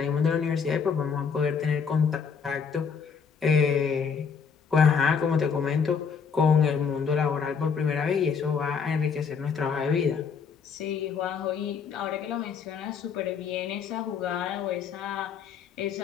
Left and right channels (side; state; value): right; quieter; 6.3 dB